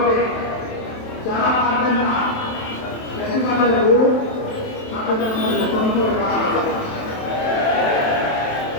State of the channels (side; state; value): right; late; 27 ms